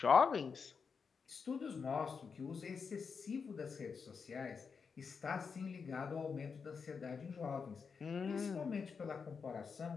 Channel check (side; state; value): right; quieter; 5.6 dB